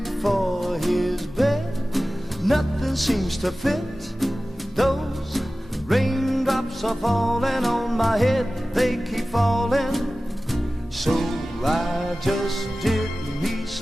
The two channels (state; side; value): normal; both; correlation 0.96